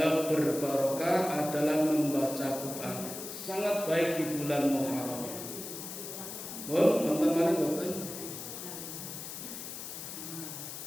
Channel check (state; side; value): noise; left; hiss, 9 dB below the sound